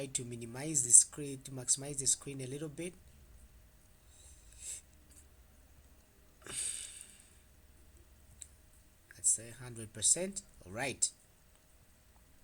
to minimize the screen, to maximize the screen a little bit. Let's say 100%. All right.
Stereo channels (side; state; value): both; identical; correlation 1.00